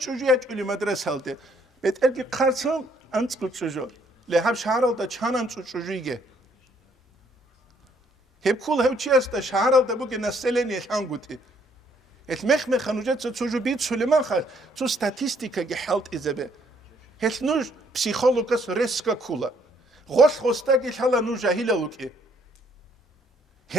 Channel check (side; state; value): both; normal; correlation 0.66